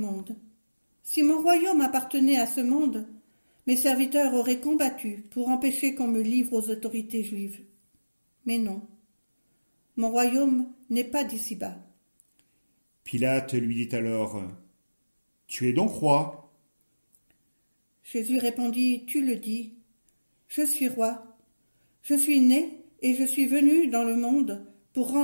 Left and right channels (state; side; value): inverted; both; correlation -1.00